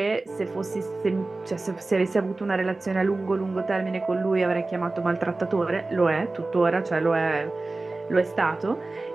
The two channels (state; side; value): quieter; left; 3.3 dB